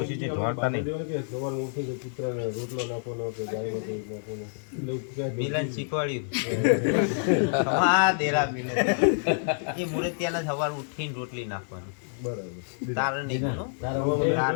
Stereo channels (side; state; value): right; silent; digital silence